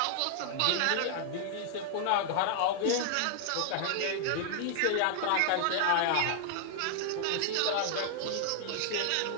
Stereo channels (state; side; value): different; both; correlation 0.00